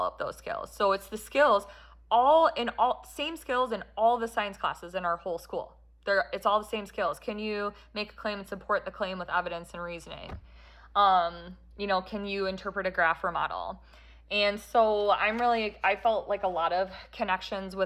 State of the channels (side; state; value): both; identical; correlation 1.00